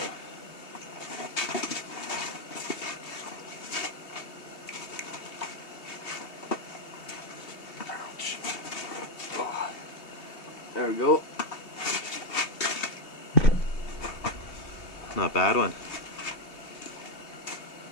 Ouch. Oh. There we go. Not a bad one.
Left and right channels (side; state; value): right; late; 2.8 ms